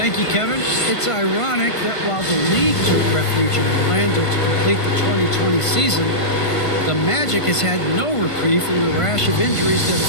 you, Kevin. It's ironic that while the league took refuge in Orlando to complete the 2020 season, the Magic has had no reprieve from the rash of injuries that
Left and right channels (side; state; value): right; late; 1.5 ms